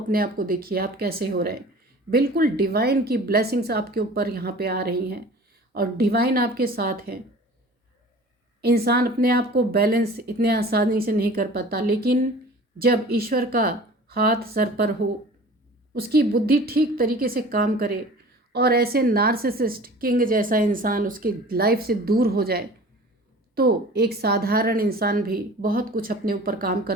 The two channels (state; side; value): normal; both; correlation 0.43